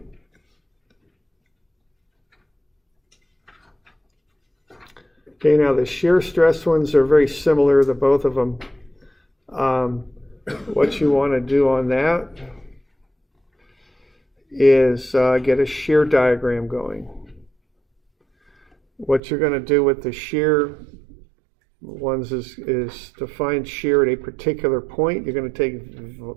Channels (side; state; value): left; drops out; at 19.2 s